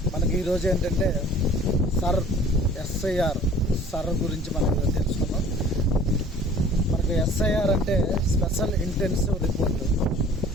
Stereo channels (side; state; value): both; normal; correlation 0.49